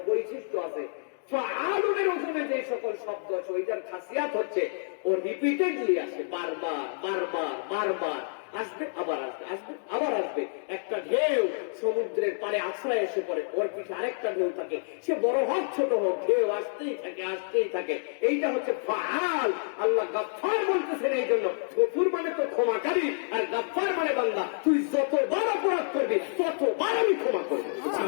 বৈশিষ্ট্য আছে। ফাআলুনের ওজনে যে সকল শব্দ আছে ওইটার খাসিয়াত হচ্ছে ও রিপিটেডলি আসে, বারবার বারবার বারবার আসবে, আবার আসবে, আসবে আবার আসবে। একটা ঢেউ সমুদ্রের পারে আশ্রয় এসে পড়ে, ওর পিঠে আরেকটা ঢেউ থাকে, সে বড় হোক ছোট হোক, ঢেউ আসতেই থাকে আসতেই থাকে। এইটা হচ্ছে ফাআল। আল্লাহ গফফার বলতেছেন এই জন্য। গফুর মানে তো ক্ষমাকারী, আর গফফার মানে বান্দা তুই যতবার অপরাধ করবি ততবার আমি ক্ষমা করবো।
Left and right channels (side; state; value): right; silent; digital silence